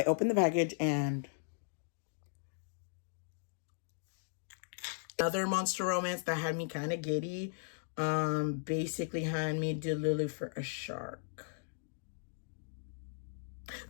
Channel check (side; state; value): right; silent; digital silence